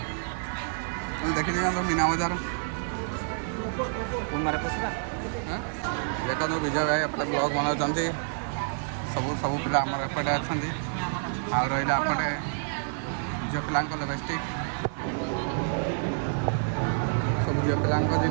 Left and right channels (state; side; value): silent; left; digital silence